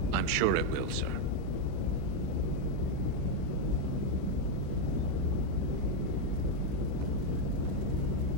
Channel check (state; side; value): different; both; correlation 0.02